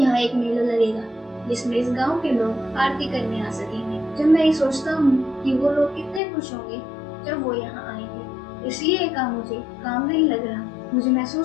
एक मेला लगेगा जिसमें इस गांव के लोग आरती करने आ सकेंगे। जब मैं ये सोचता हूँ कि वो लोग कितने खुश होंगे जब वो यहाँ आएंगे, इसलिए ये काम मुझे काम नहीं लग रहा। मुझे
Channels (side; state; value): right; drops out; at 6.2 s